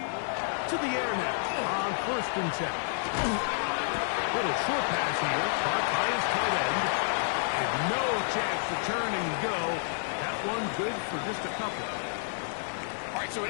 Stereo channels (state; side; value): silent; right; digital silence